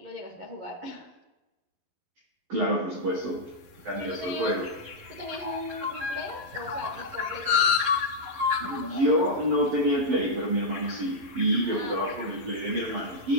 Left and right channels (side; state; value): left; late; 11 ms